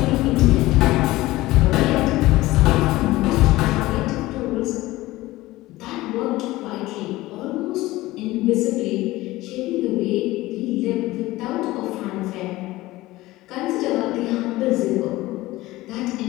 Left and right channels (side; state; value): right; quieter; 18.2 dB